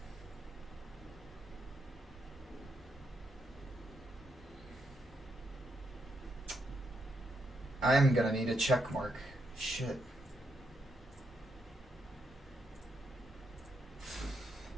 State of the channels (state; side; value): normal; both; correlation 0.80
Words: I'm gonna need a check mark. Shit.